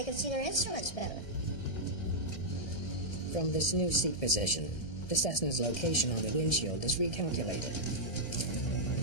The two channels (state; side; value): late; right; 1.7 ms